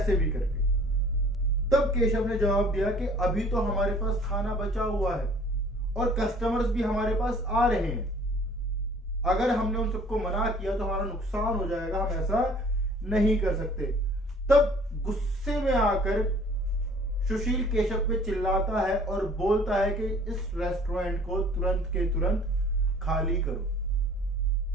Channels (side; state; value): both; normal; correlation 0.52